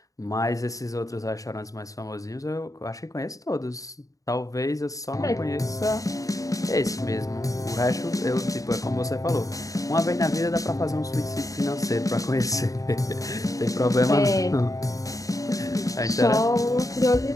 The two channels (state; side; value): late; right; 0.16 ms